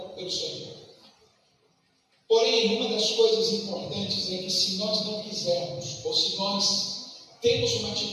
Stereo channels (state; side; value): identical; both; correlation 1.00